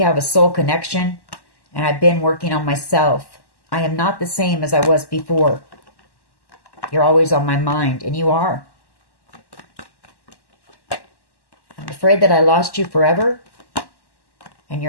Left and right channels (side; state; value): right; late; 1.1 ms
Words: have a soul connection, and I've been working on myself. I am not the same as I was before. You're always on my mind, and you are. I'm afraid that I lost you forever, and